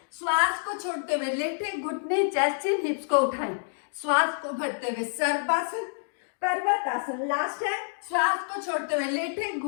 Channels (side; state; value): right; silent; digital silence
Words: श्वास को छोड़ते हुए लेटे, घुटने, चेस्ट, चिन, हिप्स को उठाएं, श्वास को भरते हुए सर्पासन, पर्वतासन। लास्ट है। श्वास को छोड़ते हुए लेटे,